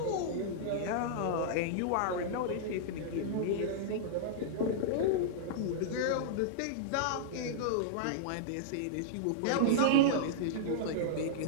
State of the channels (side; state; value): both; different; correlation -0.02